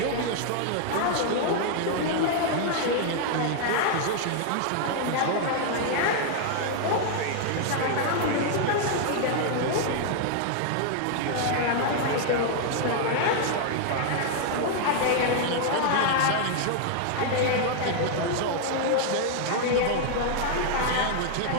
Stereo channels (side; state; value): both; different; correlation 0.00